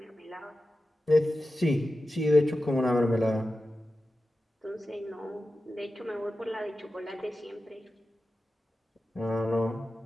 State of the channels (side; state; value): both; normal; correlation 0.93